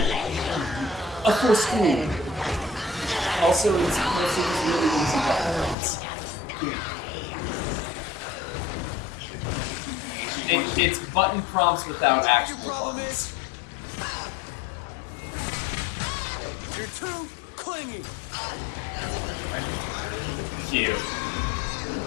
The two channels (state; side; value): drops out; right; at 5.8 s